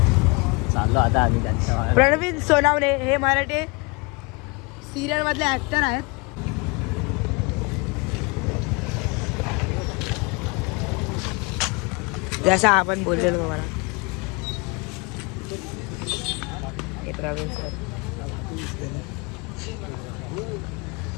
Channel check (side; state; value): right; quieter; 28.8 dB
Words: चाललो आता आम्ही. प्रणवीन सोनावणे हे मराठी सिरियल मधले ऍक्टर आहेत. जसा आपण बोललेलो तुम्हाला. हे प्रवीण सर.